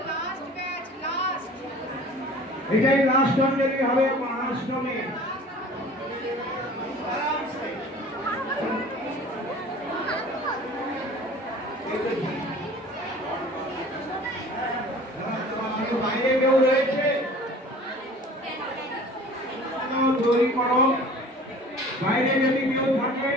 এটাই লাস্ট অঞ্জলি হবে মহাষ্টমী। বাইরে কেউ রয়েছে তৈরি করো। বাইরে যদি কেউ থাকে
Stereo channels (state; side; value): normal; both; correlation 0.45